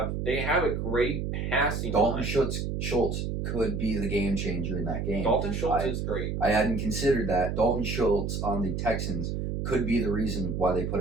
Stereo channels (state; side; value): noise; right; hum, 2 dB below the sound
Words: have a great passing Dalton line. Schultz could be the game changer in that game. Dalton Schultz is great. I hadn't considered that. Dalton Schultz on the Texans could be the reason why they put